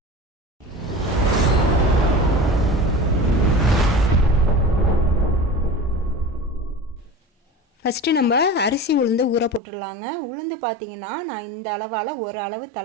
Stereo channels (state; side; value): drops out; left; at 9.6 s